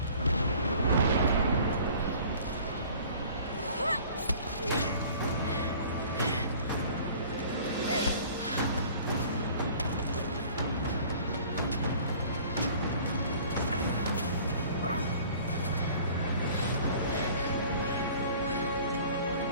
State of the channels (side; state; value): both; inverted; correlation -0.49